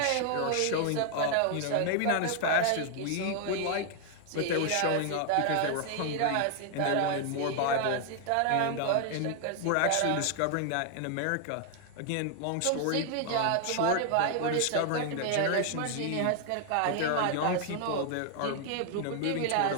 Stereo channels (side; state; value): both; different; correlation 0.00